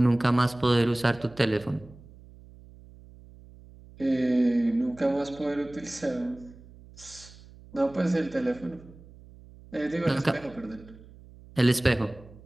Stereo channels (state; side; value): noise; right; hum, 21 dB below the sound